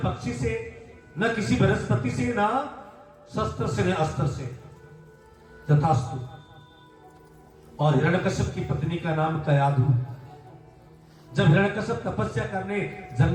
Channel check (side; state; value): both; identical; correlation 1.00